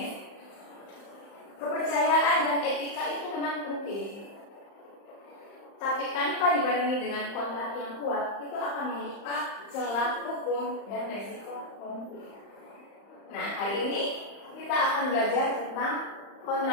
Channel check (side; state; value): right; late; 35 ms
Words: kepercayaan dan etika itu memang penting. Tapi tanpa dibarengi dengan kontrak yang kuat, itu akan membuka celah hukum dan resiko konflik. Nah, hari ini kita akan belajar tentang